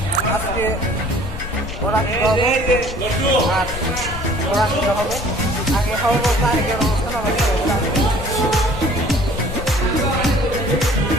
আজকে ওরা কি হবে আর ওরা কি হবে। আগে হবে বলতে আগের অনুষ্ঠান হবে।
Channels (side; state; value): left; noise; rumble, 8 dB below the sound